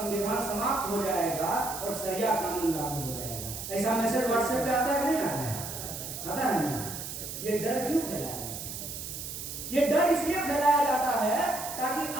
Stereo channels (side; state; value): right; noise; hiss, 8 dB below the sound